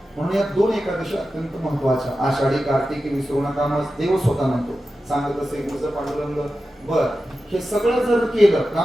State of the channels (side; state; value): both; normal; correlation 0.92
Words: म्हणून या 2 एकादशी अत्यंत महत्वाच्या. आषाढी कार्तिकी विसरू नका, मग देव स्वतः म्हणतो, सांगत असे गुरुचं पांडुरंग. बर हे सगळं जर केलं,